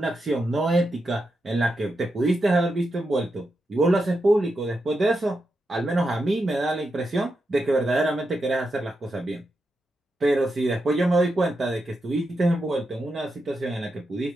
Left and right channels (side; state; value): both; normal; correlation 0.86